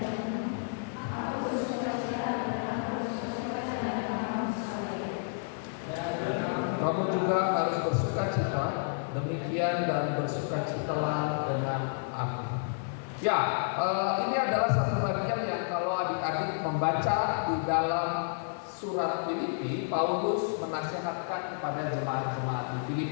Kamu juga harus bersuka-cita, demikian dan bersukacitalah dengan aku. Ya, ini adalah satu bagian yang kalau adik-adik membaca di dalam surat Filipi, Paulus menasihatkan kepada jemaat-jemaat di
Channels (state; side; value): silent; right; 57 dB below the other